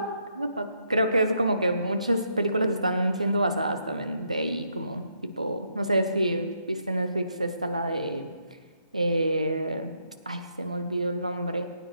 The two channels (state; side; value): inverted; both; correlation -0.76